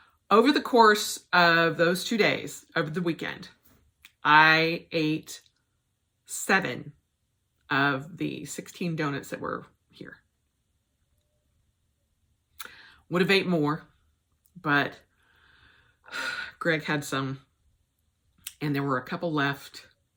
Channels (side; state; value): both; identical; correlation 1.00